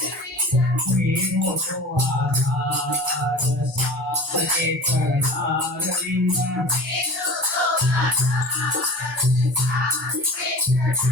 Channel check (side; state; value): both; normal; correlation 0.38